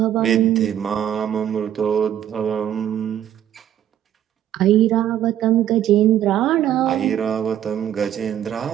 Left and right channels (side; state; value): left; quieter; 11.0 dB